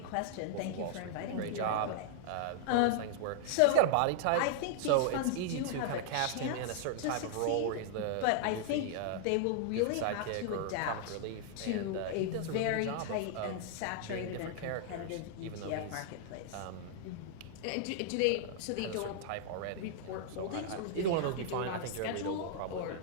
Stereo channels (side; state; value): both; different; correlation -0.01